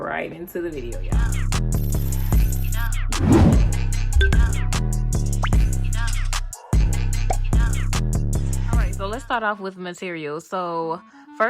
into the video, y'all. So let's start off with materials. So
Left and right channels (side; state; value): both; identical; correlation 1.00